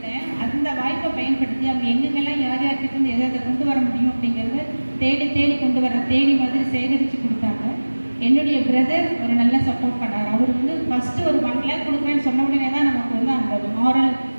அந்த வாய்ப்பை பயன்படுத்தி அவங்க எங்கெங்கெல்லாம் யார் யார்கிட்ட இருந்து எதை கொண்டு வர முடியும் அப்படிங்கிறத தேடி கொண்டு வர மாதிரி சேகரித்து கொடுத்தாங்க. என்னுடைய பிரதர் ஒரு நல்ல சப்போர்ட் பண்ணார். அவர் வந்து ஃபஸ்ட்டு ஒரு 1 lakh கொடுக்குறேன்னு சொன்ன உடனே தான் நமக்கு வந்து அந்த மாரல்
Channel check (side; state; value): both; inverted; correlation -1.00